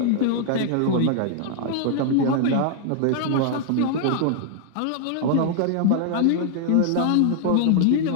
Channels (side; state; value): both; different; correlation 0.00